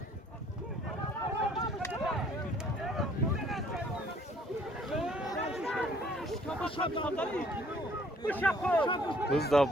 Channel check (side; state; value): both; normal; correlation 0.59